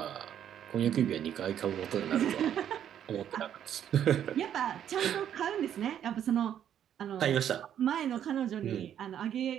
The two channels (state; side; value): quieter; left; 9.9 dB